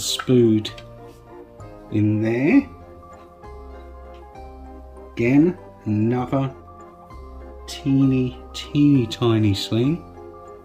spood in there. Again, another teeny, teeny, tiny sling.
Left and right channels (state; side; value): identical; both; correlation 1.00